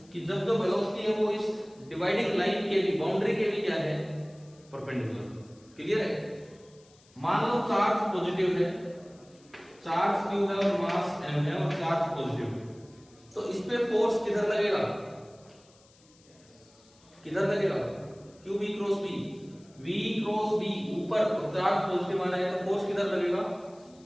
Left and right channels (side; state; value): left; noise; hiss, 29 dB below the sound